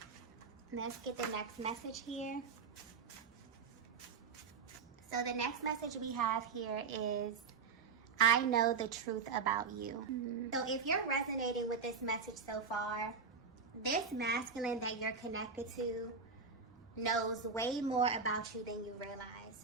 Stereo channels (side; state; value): left; quieter; 5.3 dB